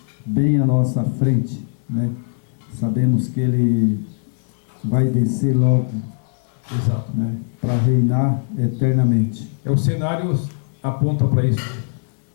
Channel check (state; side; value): silent; right; digital silence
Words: bem à nossa frente, né? Sabemos que ele vai descer logo, exato, né, para reinar eternamente. O cenário aponta para isso.